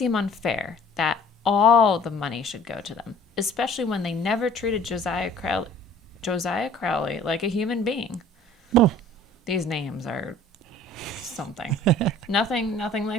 unfair that all the money should go to them, especially when they never treated Josiah Crowley like a human being. Oh. These names are something. nothing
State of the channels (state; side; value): normal; both; correlation 0.50